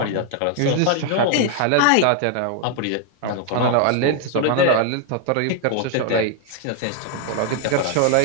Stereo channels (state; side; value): different; both; correlation 0.00